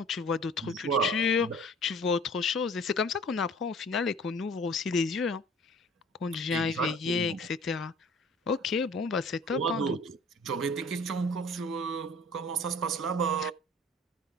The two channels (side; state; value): both; normal; correlation 0.48